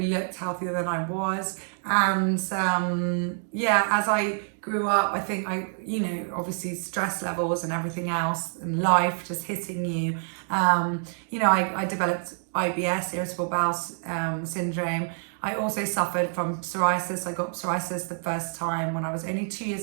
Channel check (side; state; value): left; silent; 59 dB below the other